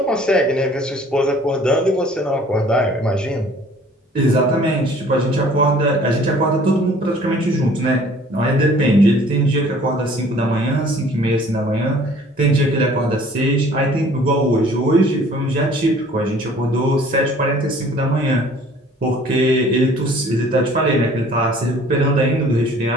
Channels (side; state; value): both; normal; correlation 0.53